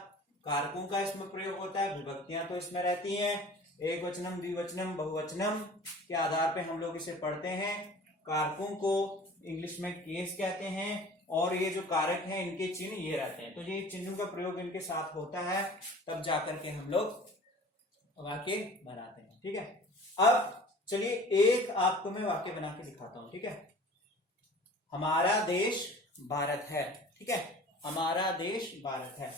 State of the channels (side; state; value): both; normal; correlation 0.44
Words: कारकों का इसमें प्रयोग होता है, विभक्तियां तो इसमें रहती हैं, एक वचनम, द्विवचनम, बहुवचनम के आधार पे हम लोग इसे पढ़ते हैं। कारकों को इंग्लिश में केस कहते हैं, और ये जो कारक हैं इनके चिन्ह ये रहते हैं। तो ये चिन्हों का प्रयोग इनके साथ होता है, तब जाकर के हम लोग वाक्य बनाते हैं। ठीक है, अब चलिए एक आपको मैं वाक्य बना के दिखाता हूं। ठीक है, हमारा देश भारत है। ठीक है, हमारा देश भारत है।